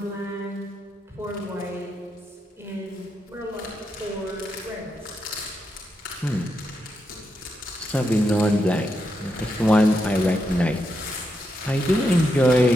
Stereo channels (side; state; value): both; normal; correlation 0.83